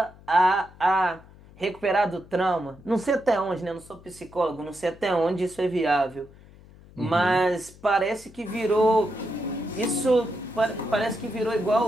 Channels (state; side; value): noise; left; hum, 23 dB below the sound